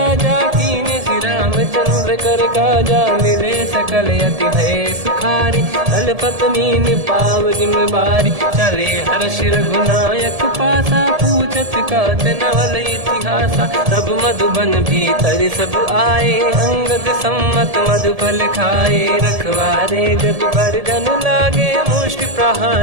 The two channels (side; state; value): left; late; 1.7 ms